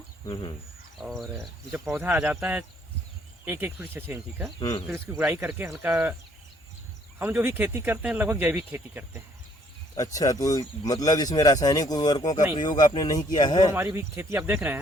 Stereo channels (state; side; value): normal; both; correlation 0.64